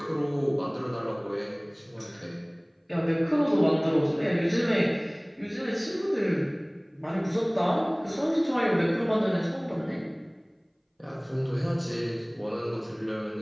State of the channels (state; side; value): identical; both; correlation 1.00